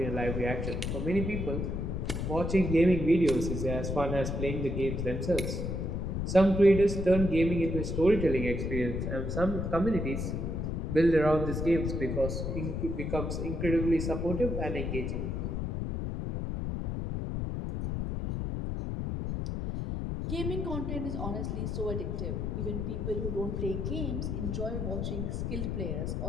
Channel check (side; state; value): left; noise; rumble, 2 dB below the sound